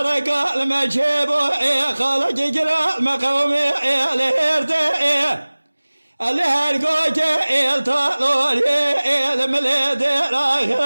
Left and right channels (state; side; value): inverted; both; correlation -1.00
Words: المجيب خالق قرا المقومي لهيرتي اللي هرقوك الطالوري المليد